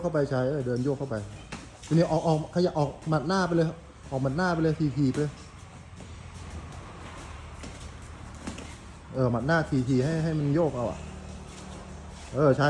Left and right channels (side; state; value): both; identical; correlation 1.00